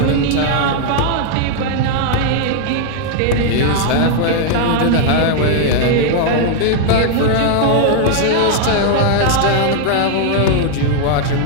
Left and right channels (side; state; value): both; different; correlation 0.00